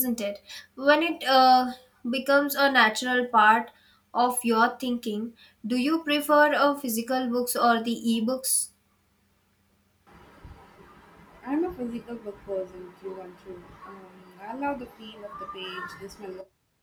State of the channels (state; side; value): identical; both; correlation 1.00